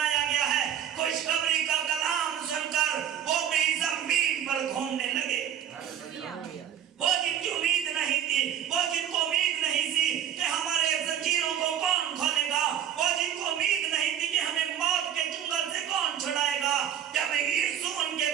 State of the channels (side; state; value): left; quieter; 9.7 dB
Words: گیا ہے. خوشخبری کا کلام سن کر وہ بھی زمین پر گھومنے لگے. وہ جن کی امید نہیں تھی، وہ جن کو امید نہیں تھی کہ ہمارے زنجیروں کو کون کھولے گا، وہ جن کو امید نہیں تھی کہ ہمیں موت کے چنگل سے کون چھڑائے گا، جب یسوع ان کے